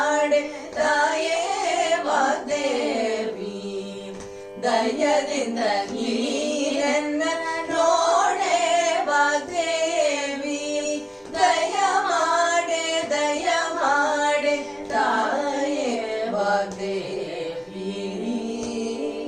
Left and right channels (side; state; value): both; identical; correlation 1.00